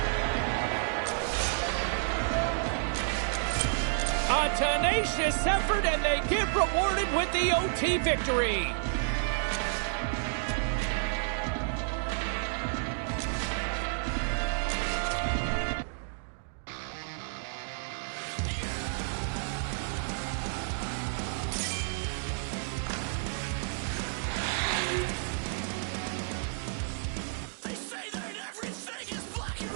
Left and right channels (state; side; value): silent; left; digital silence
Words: A tenacious effort, and they get rewarded with the OT victory.